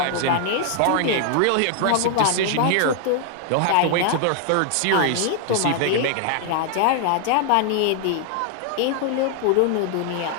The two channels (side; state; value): both; different; correlation 0.00